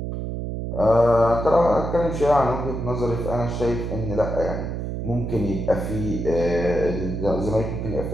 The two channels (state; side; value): noise; right; hum, 4 dB below the sound